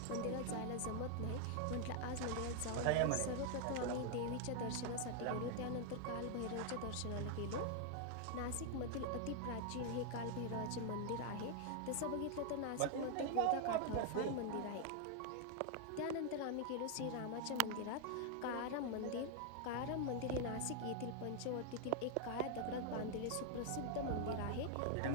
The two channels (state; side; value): different; both; correlation 0.00